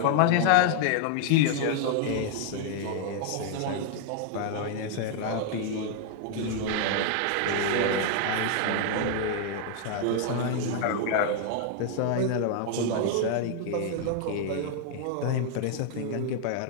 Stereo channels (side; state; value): both; different; correlation 0.00